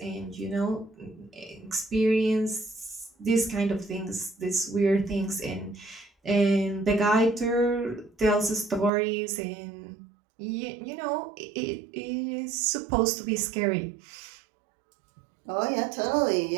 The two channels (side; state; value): left; drops out; at 8.9 s